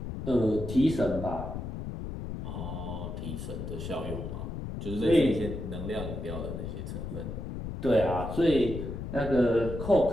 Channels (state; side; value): noise; left; rumble, 6 dB below the sound